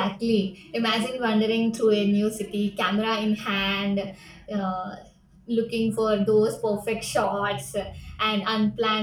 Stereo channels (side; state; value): both; identical; correlation 1.00